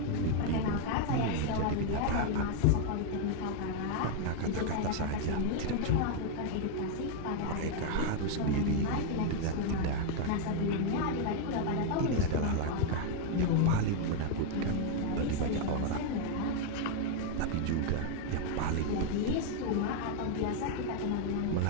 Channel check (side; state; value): both; different; correlation 0.00